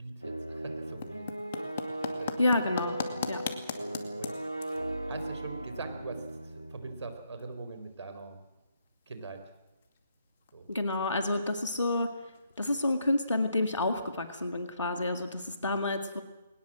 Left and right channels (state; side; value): inverted; both; correlation -0.75